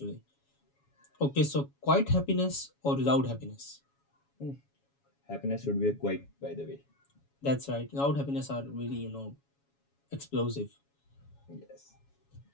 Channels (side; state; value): right; late; 7.2 ms